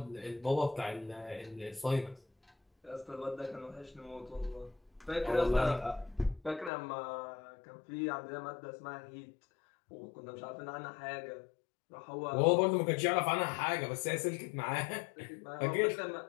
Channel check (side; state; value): right; drops out; at 6.7 s